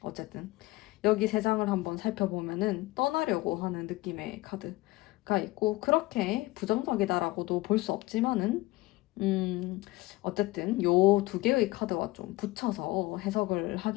어쨌든 여기 세 장을 한번 살펴보면은 떠나려고 하는 느낌의 카드가 있고 그렇게 부정적이다라고도 볼 수 없지만은 어쨌든 요 두 개의 카드와 좀 붙여서 해석을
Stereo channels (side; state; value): right; quieter; 20.0 dB